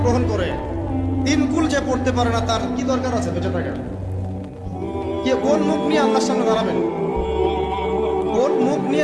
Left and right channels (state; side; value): identical; both; correlation 1.00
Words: করে 3 কুল যে পড়তে পারে না, তার কি দরকার আছে বেঁচে থাকার? কে কোন মুখ নিয়ে আল্লাহর সামনে দাঁড়াবেন? কোন মুখ নিয়ে